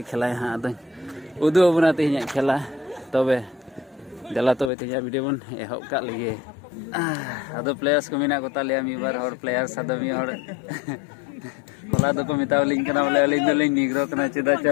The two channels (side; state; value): right; drops out; at 4.7 s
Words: खेला हाँ अद उदू अबूना तीन खेला तबे जला तो तीन वीडियो बन एहब का लगे अद प्लेयर्स को मेना को ताले मी बार और प्लेयर्स अद मी और होला दो को मितावलिंग कना बोले अलिंग दलिंग निग्रो कना चेदा